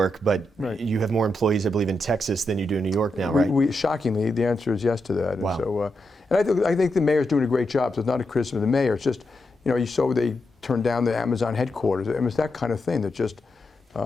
but Right. you have more employees, I believe, in Texas than you do in New York now, right? Shockingly, the answer is yes to that. Wow. And so, I think the mayor's doing a great job. So it's not a criticism of the mayor. It's just, you saw they turned down the Amazon headquarters. I mean, it's that kind of thing that just.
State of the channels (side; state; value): both; normal; correlation 0.85